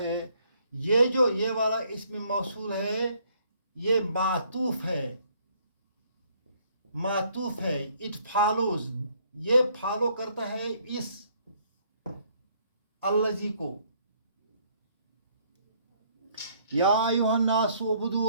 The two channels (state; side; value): inverted; both; correlation -0.65